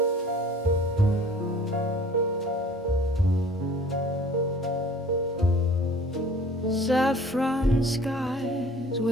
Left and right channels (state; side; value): normal; both; correlation 0.49